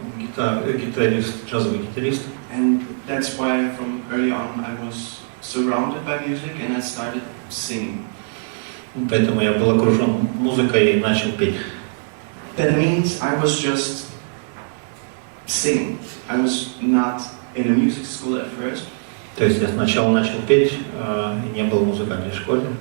гитарист, джазовый гитарист. And that's why from early on I was surrounded by music and I started singing. Поэтому я был окружен музыкой и начал петь. that means I was just singing. I was not in a music school at first. То есть я сначала начал петь и не был в музыкальной школе.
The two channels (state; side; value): silent; left; 65 dB below the other